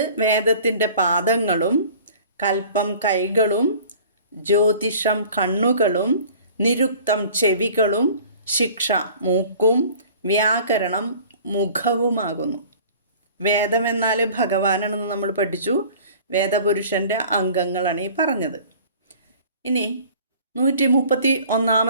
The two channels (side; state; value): both; inverted; correlation -0.47